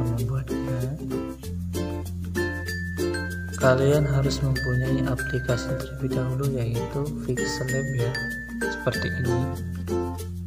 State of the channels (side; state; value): both; identical; correlation 1.00